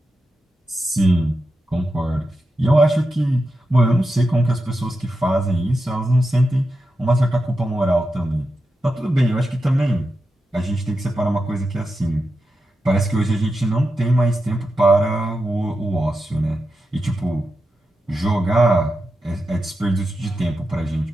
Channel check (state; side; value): normal; both; correlation 0.89